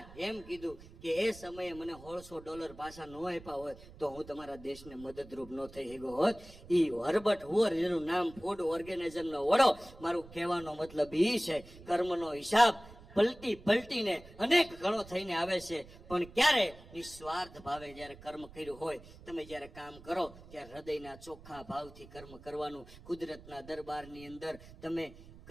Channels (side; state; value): right; noise; rumble, 19 dB below the sound